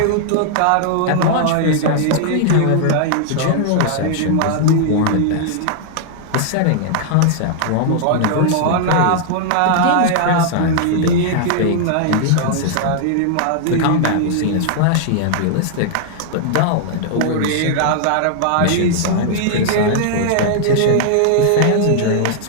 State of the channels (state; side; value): different; both; correlation -0.01